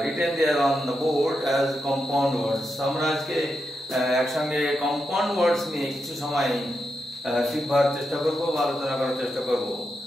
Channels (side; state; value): both; normal; correlation 0.86